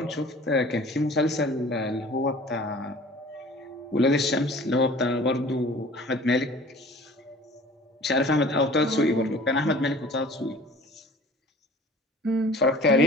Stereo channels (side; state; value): both; normal; correlation 0.46